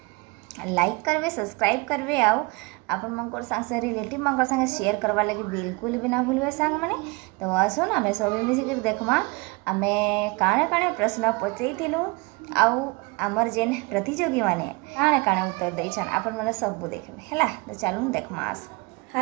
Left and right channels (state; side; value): quieter; left; 26.6 dB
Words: लाइक करवे सब्सक्राइब करवे आउ आपण मंकर संग रिलेटिव मंकर संग शेयर करवा लगे बिल्कुल भी ना भूलवे सांग मैंने तो आसुन आमे सब मिसिक देखमा आमे काणे काणे प्रश्न पचईथिलु आउ आमर जेन प्रतियोगी माने काणे काणे उत्तर देछन आपण माने सब देखबे हैला तो चलून देखमा आस